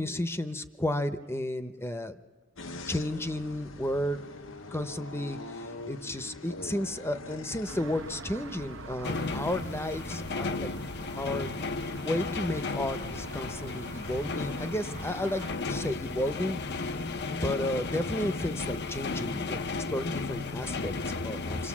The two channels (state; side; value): normal; both; correlation 0.62